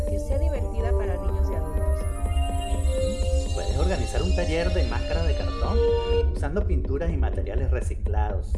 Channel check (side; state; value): both; identical; correlation 1.00